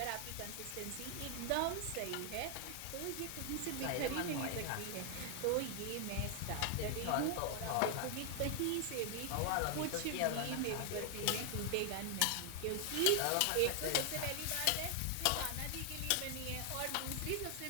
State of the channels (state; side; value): different; both; correlation 0.00